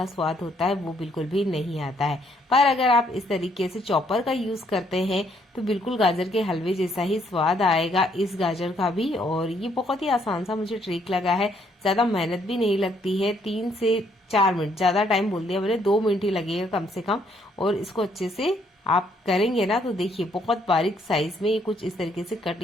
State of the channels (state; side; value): normal; both; correlation 0.69